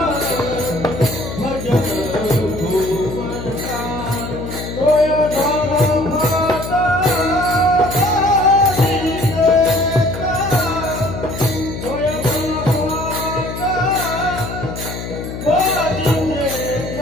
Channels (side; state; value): left; noise; hum, 8 dB below the sound